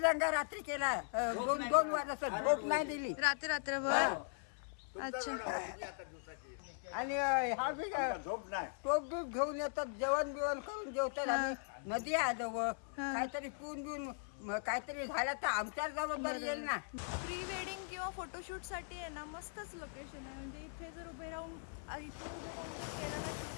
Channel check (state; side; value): silent; right; 51 dB below the other